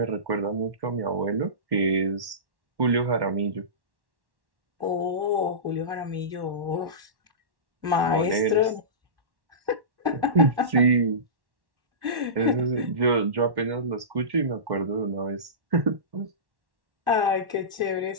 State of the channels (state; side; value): late; left; 1.1 ms